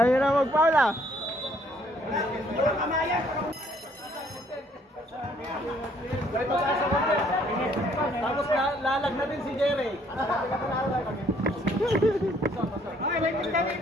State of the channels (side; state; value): both; normal; correlation 0.64